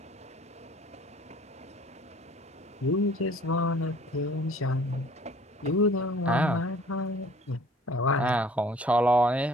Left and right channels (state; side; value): normal; both; correlation 0.52